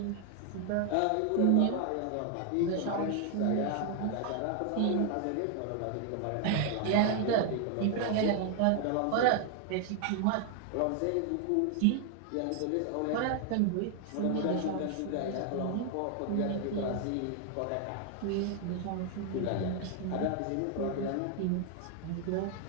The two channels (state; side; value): different; both; correlation 0.00